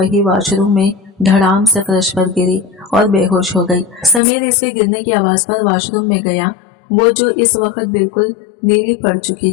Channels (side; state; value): right; drops out; at 4.2 s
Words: वॉशरूम में धड़ाम से फर्श पर गिरी और बेहोश हो गई। समीर इसके गिरने की आवाज पर वॉशरूम में गया, वो जो इस वक्त बिल्कुल नीली पड़ चुकी